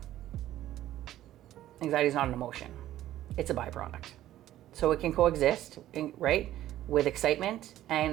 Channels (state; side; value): quieter; left; 13.5 dB